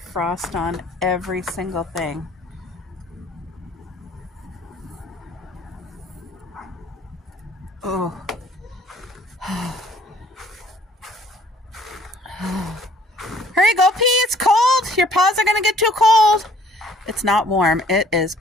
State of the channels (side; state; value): both; normal; correlation 0.59